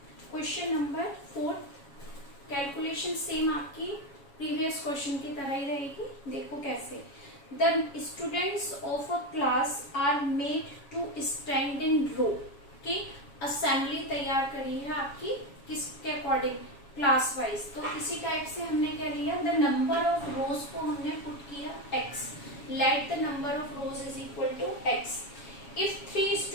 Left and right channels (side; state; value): right; late; 7.2 ms